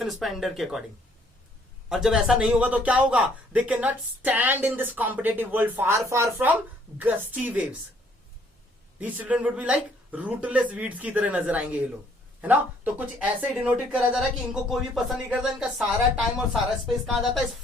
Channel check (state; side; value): normal; both; correlation 0.64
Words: स्पेंडर के अकॉर्डिंग। और जब ऐसा नहीं होगा तो क्या होगा? दे can not stand in this competitive world, far far from gusty waves. These children would be like rootless weeds की तरह नजर आएंगे ये लोग, है ना? तो कुछ ऐसे डिनोटेड करा जा रहा है कि इनको कोई भी पसंद नहीं करता, इनका सारा टाइम और सारा स्पेस कहां जाता है? इस